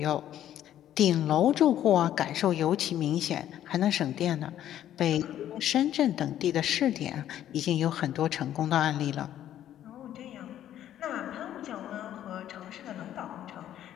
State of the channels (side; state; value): right; quieter; 11.5 dB